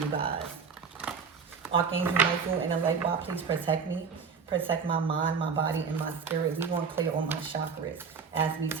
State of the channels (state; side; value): quieter; left; 5.8 dB